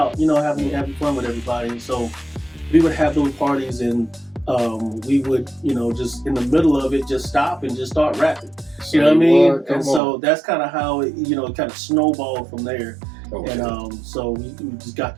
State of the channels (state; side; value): drops out; left; at 10.0 s